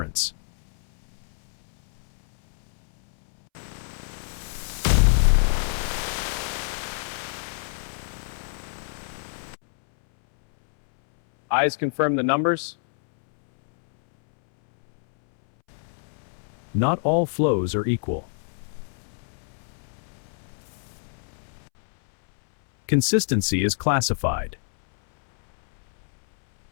Eyes confirm the numbers. Not all flows are equal. Consistency is classified.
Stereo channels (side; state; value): right; silent; 61 dB below the other